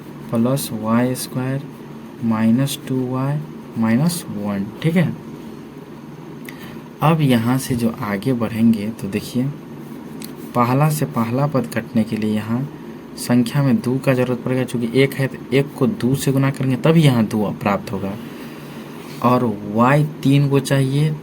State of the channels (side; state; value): both; identical; correlation 1.00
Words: plus y square minus 2y minus 1। ठीक है, अब यहाँ से जो आगे बढ़ेंगे तो देखिए पहला से पहला पद कटने के लिए यहाँ संख्या में 2 का जरूरत पड़ेगा, चूँकि 1 है तो 1 को 2 से गुना करेंगे तभी यहाँ 2 प्राप्त होगा, और y 3 को चाहिए,